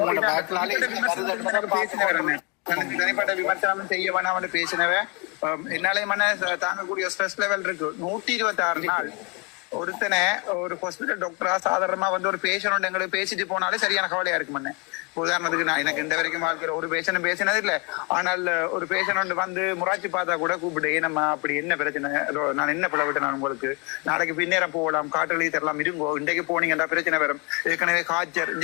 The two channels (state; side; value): quieter; right; 29.5 dB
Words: பேசினவன் எனக்கு தனிப்பட்ட விமர்சனம் செய்ய வேணாம் பேசினவன். என்னாலே தாங்கக்கூடிய ஸ்ட்ரெஸ் லெவல் இருக்கு. 126 நாள் ஒருத்தனை ஒரு ஹாஸ்பிட்டல் டாக்டரா சாதாரணமா வந்து ஒரு பேஷண்ட் எங்களுக்கு பேசிட்டு போனாலே சரியான கவலையா இருக்கு மண்ணே. உதாரணத்துக்கு நான் எனக்கு இந்த வரைக்கும் வாழ்க்கையில ஒரு பேஷண்ட் பேசினது இல்லை. ஆனால் ஒரு பேஷண்ட் வந்து முராட்சி பார்த்தா கூட கூப்பிட்டு ஏனம்மா அப்படி என்ன பிரச்சனை, நான் என்ன பிள்ளை விட்டேன், நான் உங்களுக்கு நாளைக்கு பின்னேரம் போகலாம், காட்டுலி தரலாம், இருங்கோ, இன்றைக்கு போனீங்கன்னா பிரச்சனை வரும், ஏற்கனவே காய்ச்சல்